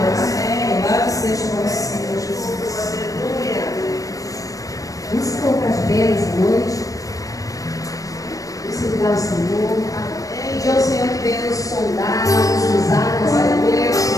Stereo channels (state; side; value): late; right; 0.16 ms